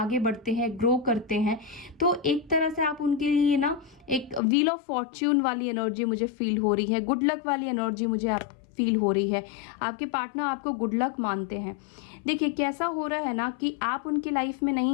बढ़ते हैं, ग्रो करते हैं, तो एक तरह से आप उनके लिए ना एक व्हील ऑफ फॉर्च्यून वाली एनर्जी मुझे फील हो रही है, गुड लक वाली एनर्जी मुझे आप फील हो रही है। आपके पार्टनर आपको गुड लक मानते हैं। देखिए, कैसा हो रहा है ना कि आप उनकी लाइफ में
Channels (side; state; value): right; drops out; at 4.4 s